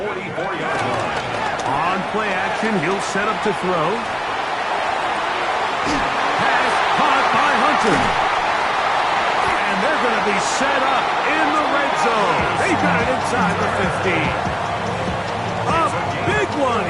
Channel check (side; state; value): both; identical; correlation 1.00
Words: 44-yard line. On play action, he'll set up to throw. Pass caught by Hunter. And they're going to be set up in the red zone. They got it inside the 15. A big one